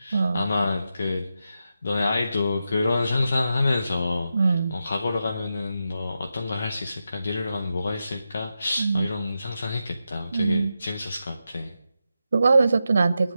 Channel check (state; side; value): inverted; both; correlation -0.88